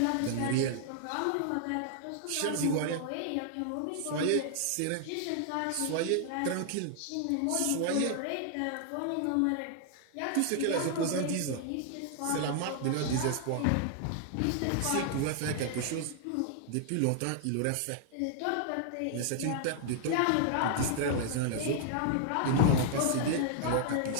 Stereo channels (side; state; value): both; different; correlation 0.00